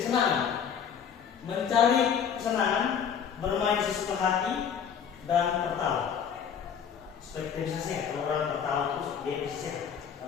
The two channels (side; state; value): right; quieter; 7.6 dB